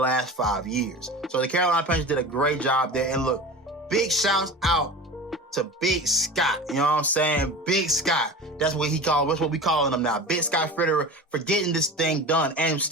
5 years. So the Carolina Panthers did a great job there. And look, big shouts out to Big Scott. You know what I'm saying? Big Scott. That's what we calling him now. Big Scott Fitterer for getting this thing done and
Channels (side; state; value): both; normal; correlation 0.33